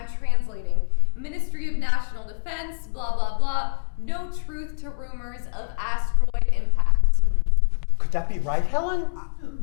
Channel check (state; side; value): silent; right; digital silence